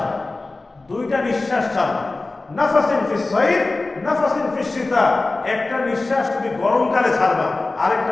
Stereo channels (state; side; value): quieter; right; 3.3 dB